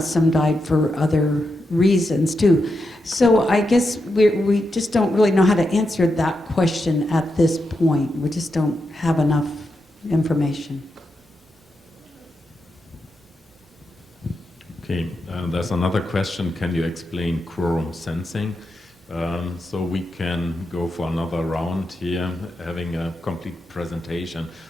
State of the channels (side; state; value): both; normal; correlation 0.86